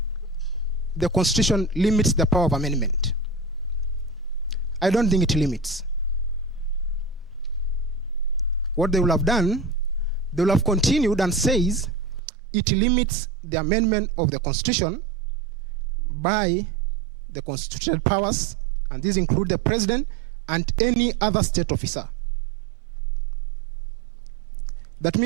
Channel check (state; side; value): drops out; left; at 12.2 s